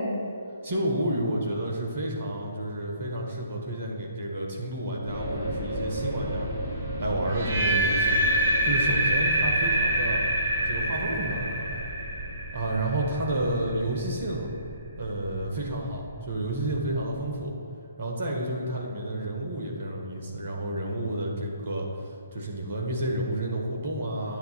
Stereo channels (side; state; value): both; inverted; correlation -0.55